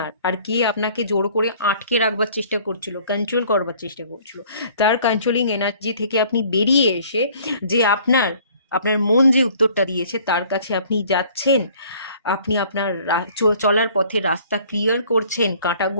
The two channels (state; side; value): inverted; both; correlation -0.55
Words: আর কে আপনাকে জোর করে আটকে রাখবার চেষ্টা করছিল, কন্ট্রোল করবার চেষ্টা করছিল। তার কন্ট্রোলিং এনার্জি থেকে আপনি বেরিয়ে এসে যে আপনার আপনার মন যে উত্তরটা দিয়েছে তার কাছে আপনি যাচ্ছেন, আপনি আপনার চলার পথে রাস্তা ক্লিয়ার করছেন,